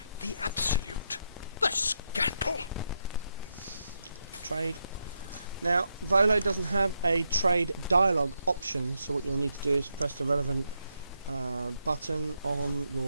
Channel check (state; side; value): inverted; both; correlation -0.81